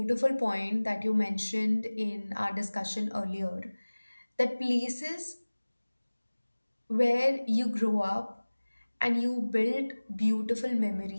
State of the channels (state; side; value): inverted; both; correlation -1.00